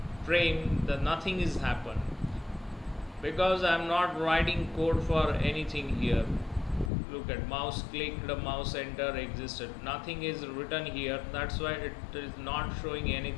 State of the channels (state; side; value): drops out; right; at 6.9 s